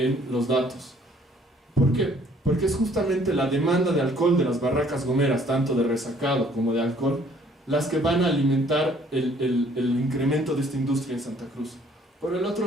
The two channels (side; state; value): both; normal; correlation 0.60